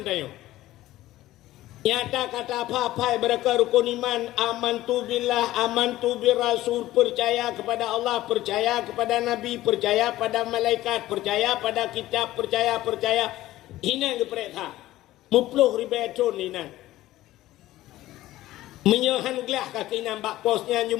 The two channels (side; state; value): right; quieter; 15.7 dB